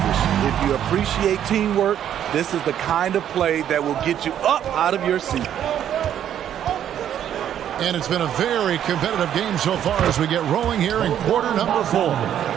If you appreciate teamwork, this is the kind of play that will get you up out of your seat. And it's been a very competitive game so far as we get rolling here in quarter number 4.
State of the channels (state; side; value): quieter; left; 10.2 dB